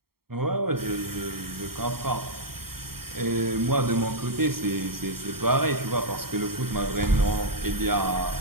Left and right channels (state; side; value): late; left; 0.94 ms